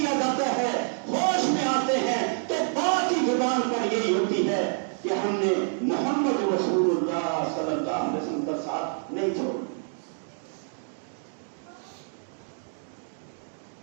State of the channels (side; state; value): left; silent; 60 dB below the other